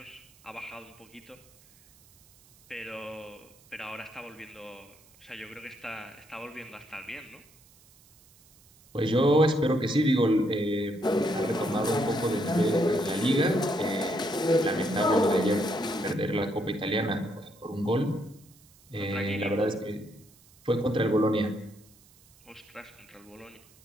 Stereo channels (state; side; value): noise; right; hiss, 28 dB below the sound